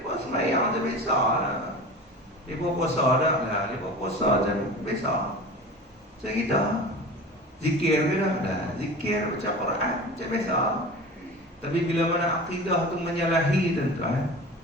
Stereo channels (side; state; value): both; normal; correlation 0.35